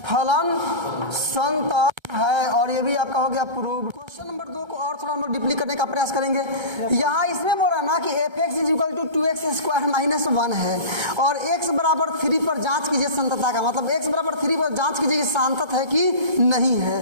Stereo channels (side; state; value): left; late; 1.3 ms